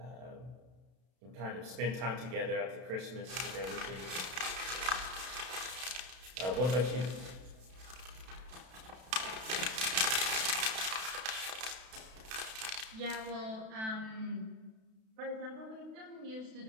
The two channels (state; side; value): late; left; 32 ms